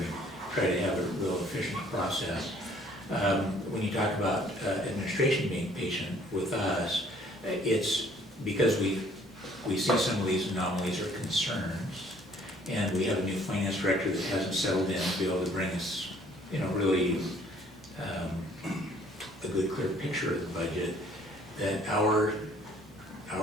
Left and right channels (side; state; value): both; normal; correlation 0.59